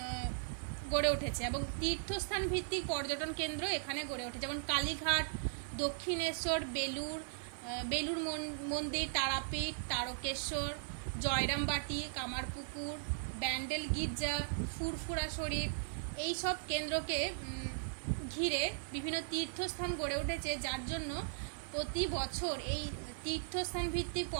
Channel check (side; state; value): left; silent; 52 dB below the other